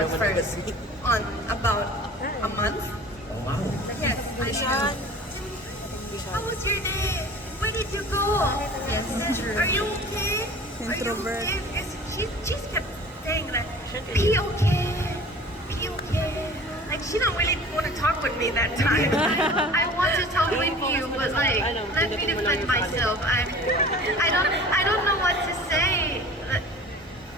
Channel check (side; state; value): both; normal; correlation 0.43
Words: first on about a month. Oh wow. Yes, I said, how was your day? Where did you go? Yes, true. Are you okay? Are you Introvert. okay? Because she just kept saying that, be okay, be okay. Like she don't really want to talk with me that time. I want to talk with you, but like, let me defend myself. I don't know what to say.